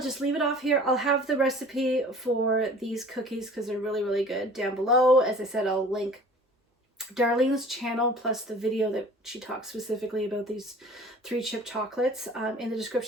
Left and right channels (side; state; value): both; normal; correlation 0.46